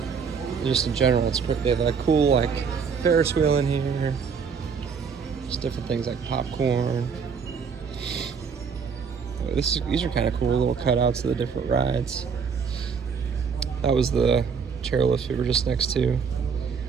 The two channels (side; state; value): left; quieter; 6.1 dB